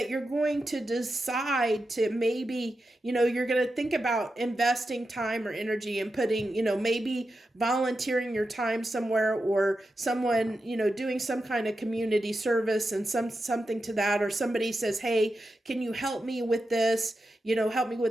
you're going to decide to maybe, you're going to think about investing time or energy and putting, maybe volunteering your time somewhere, or someone, doing some kind of community service and something to that, or somebody says, hey, can you help me with this, help me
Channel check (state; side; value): normal; both; correlation 0.89